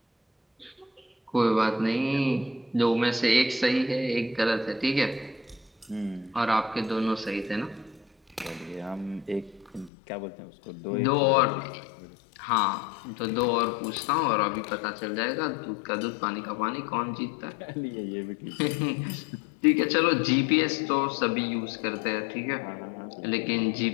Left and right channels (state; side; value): drops out; right; at 9.9 s